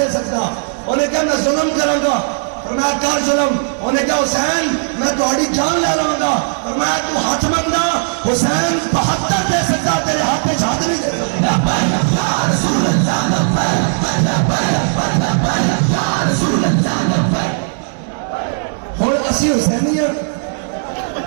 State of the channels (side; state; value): left; silent; digital silence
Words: سکتا. انہیں کیا میں ظلم کروں گا فرمایا کر ظلم. انہیں کہا حسین میں تہاڈی جان لے لوں گا. فرمایا تو ہاتھ منگنا. حسین 72 دے سکتا تیرے ہاتھ میں ہاتھ نہیں دے ہوں اسی حسینی ہاں.